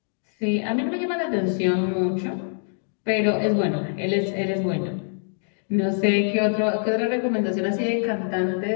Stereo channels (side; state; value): right; silent; digital silence